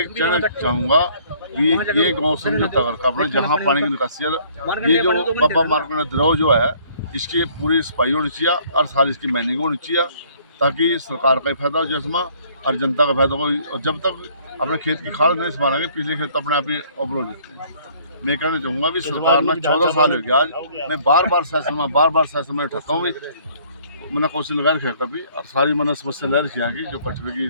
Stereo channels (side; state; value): both; inverted; correlation -0.59